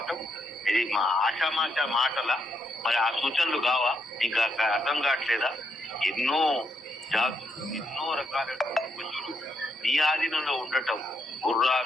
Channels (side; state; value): both; normal; correlation 0.78